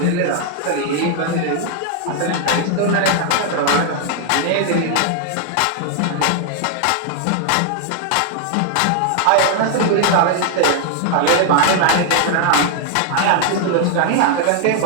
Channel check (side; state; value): both; different; correlation 0.00